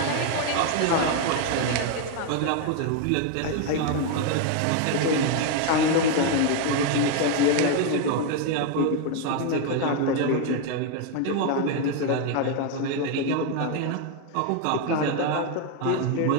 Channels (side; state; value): both; different; correlation 0.01